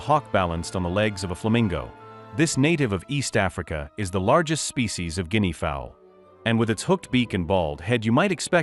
balanced on the legs of a flamingo. This native of East Africa is the largest species of guinea fowl. And with its hooked beak and bald head, you might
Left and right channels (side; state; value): both; identical; correlation 1.00